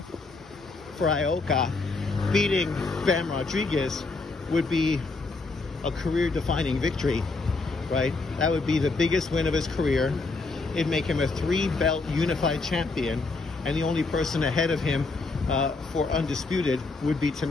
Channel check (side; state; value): right; quieter; 3.7 dB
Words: For Ioka, beating Bam Rodriguez would be a career-defining victory. right? That would be the biggest win of his career. It'd make him a 3-belt unified champion, and the only person ahead of him for undisputed would be